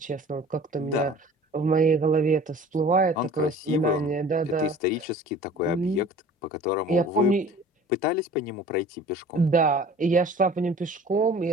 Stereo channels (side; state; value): both; normal; correlation 0.45